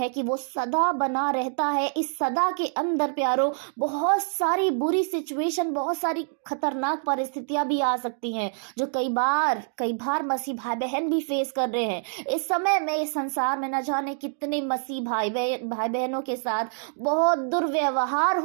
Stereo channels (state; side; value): silent; left; digital silence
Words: कि वो सदा बना रहता है। इस सदा के अंदर प्यारो बहुत सारी बुरी सिचुएशन, बहुत सारी खतरनाक परिस्थितियां भी आ सकती हैं, जो कई बार मसीह भाई बहन भी फेस कर रहे हैं। इस समय में इस संसार में न जाने कितने मसीह भाई बहनों के साथ बहुत दुर्व्यवहार